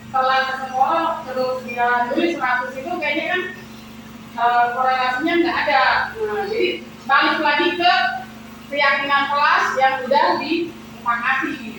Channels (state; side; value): identical; both; correlation 1.00